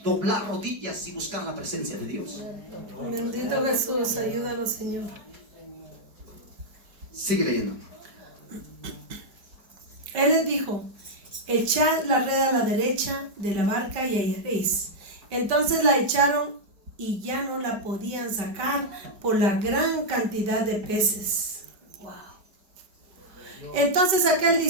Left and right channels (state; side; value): late; left; 4.8 ms